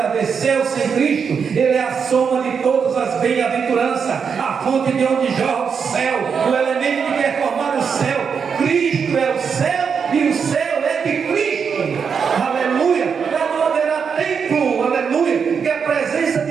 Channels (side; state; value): left; quieter; 6.4 dB